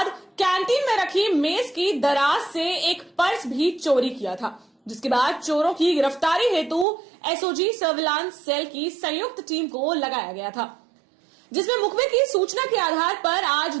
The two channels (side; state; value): left; drops out; at 6.9 s